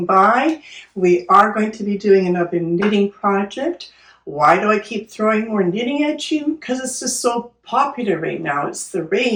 by. We are going to be doing another knitting project. Why do I keep throwing more knitting at you? Because it's just so popular right now. It's the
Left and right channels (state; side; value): identical; both; correlation 1.00